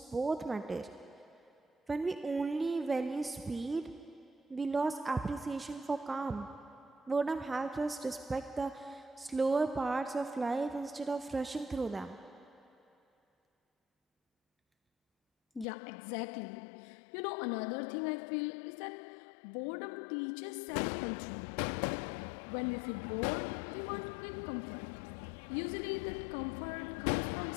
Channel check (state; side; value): drops out; right; at 15.7 s